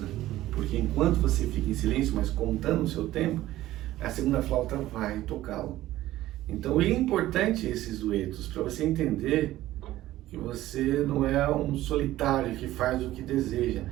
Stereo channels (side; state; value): left; quieter; 15.2 dB